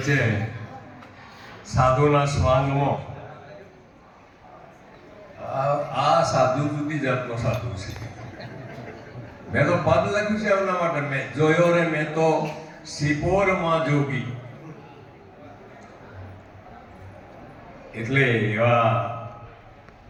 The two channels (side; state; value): both; identical; correlation 1.00